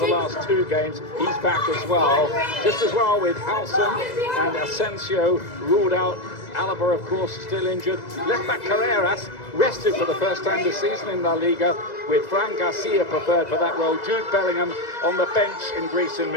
last 2 games, he's back as well. Just as well with Halson and Asensio ruled out. Alaba, of course, still injured. Left-back Carreras rested for the first time this season in La Liga, with Fran Garcia preferred for that role. Jude Bellingham on the bench in Greece in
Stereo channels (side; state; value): right; late; 2.0 ms